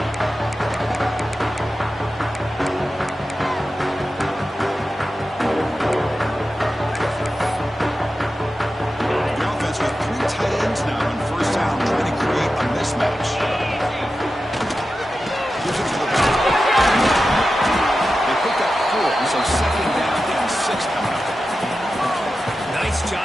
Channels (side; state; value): both; normal; correlation 0.92